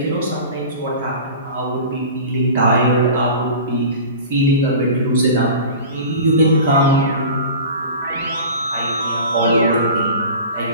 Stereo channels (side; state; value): both; inverted; correlation -0.37